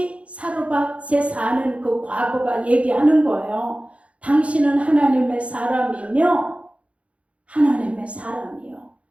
사르밧에 사는 그 과부가 얘기하는 거예요. 당신은 하나님의 사람이며 하나님의 사람이요.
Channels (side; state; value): left; late; 0.063 ms